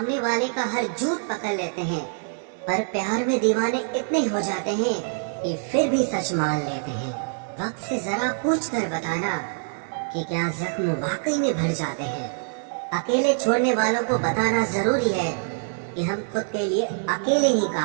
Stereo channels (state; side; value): silent; left; 62 dB below the other